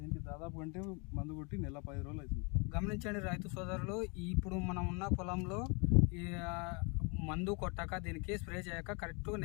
దీనికి దాదాపు అంటే మందు కొట్టి నెల 10 రోజులు అవుతుంది. గమనించండి రైతు సోదరులు, ఇప్పుడు మనం ఉన్న పొలంలో ఈ మందు కొట్టాక దీనికి స్ప్రే చేయక కరెక్ట్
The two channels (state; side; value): quieter; right; 32.8 dB